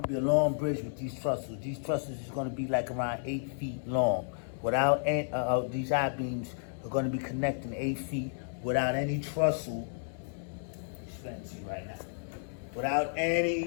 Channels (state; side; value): silent; right; digital silence